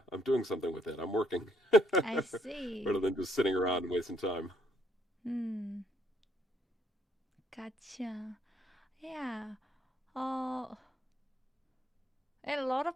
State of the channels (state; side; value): normal; both; correlation 0.70